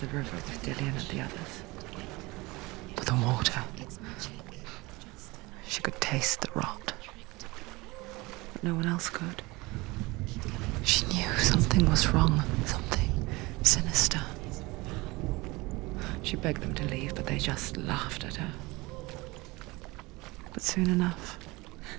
river with Dillian and the others. With the water. She could taste the rot. But no one else could. She knew something was wrong. Something sinister. She begged them to leave, but they just laughed at her. But soon enough,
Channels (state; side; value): quieter; left; 22.9 dB